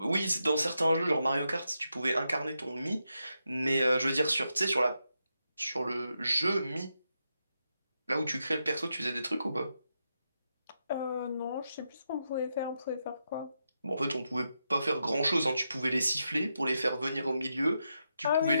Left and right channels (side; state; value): both; inverted; correlation -0.85